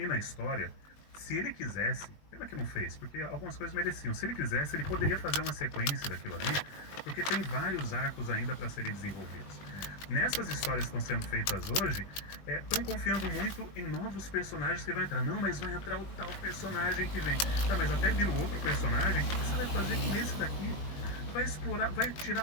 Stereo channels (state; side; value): late; right; 20 ms